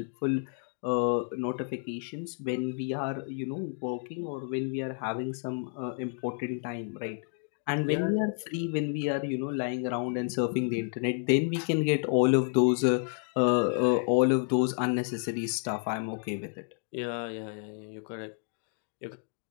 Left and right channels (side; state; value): right; silent; 56 dB below the other